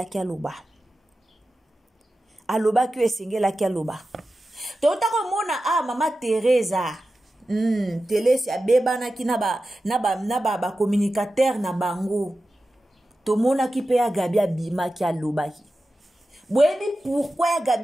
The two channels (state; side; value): normal; both; correlation 0.93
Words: ki aloba alobaki o esengela ki aloba touta ko mona mama Teresa Telesi abebana ki na ba communicateur na bango to mona ki pe ya Gabi bimaki alobaki. Boyebi pourquoi